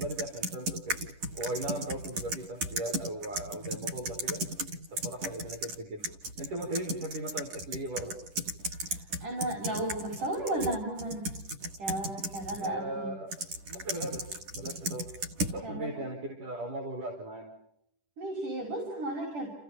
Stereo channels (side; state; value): left; late; 10 ms